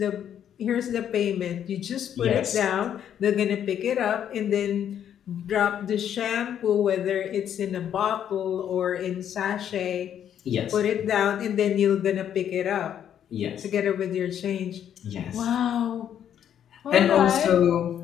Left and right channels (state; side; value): quieter; right; 9.6 dB